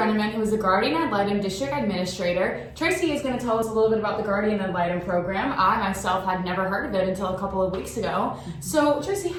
who is the Guardian Ad Litem District Administrator. Tracy is going to tell us a little bit about the Guardian Ad Litem program. I myself had never heard of it until a couple of weeks ago. So Tracy,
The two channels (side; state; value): both; identical; correlation 1.00